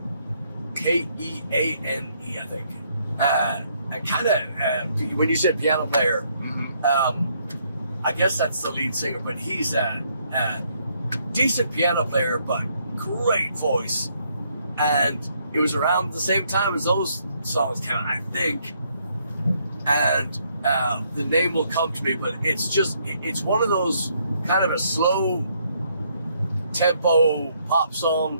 Keane, I think. And kind of, when you said piano player, I guess that's the lead singer, but he's a decent piano player, but great voice. And it was around the same time as those songs came out, I think. And the name will come to me, but it's one of those kind of a slow tempo pop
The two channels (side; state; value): both; inverted; correlation -0.71